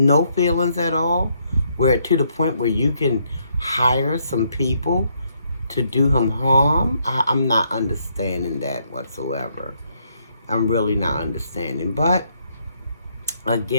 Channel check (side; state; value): both; inverted; correlation -0.73